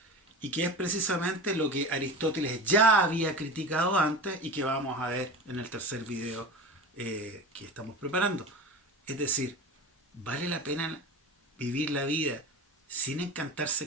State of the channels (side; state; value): both; normal; correlation 0.31